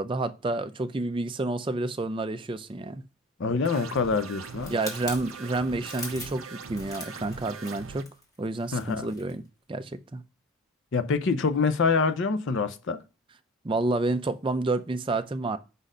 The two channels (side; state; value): both; normal; correlation 0.38